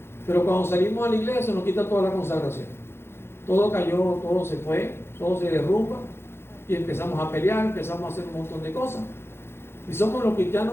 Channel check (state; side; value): late; right; 0.12 ms